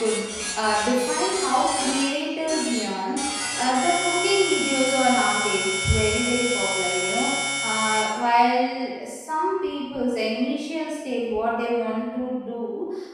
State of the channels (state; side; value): identical; both; correlation 1.00